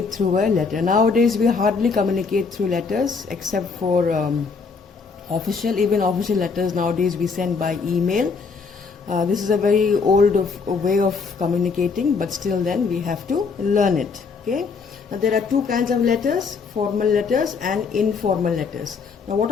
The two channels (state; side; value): quieter; right; 5.0 dB